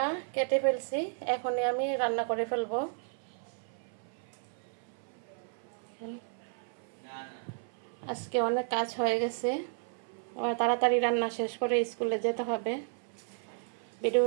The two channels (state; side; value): silent; left; 56 dB below the other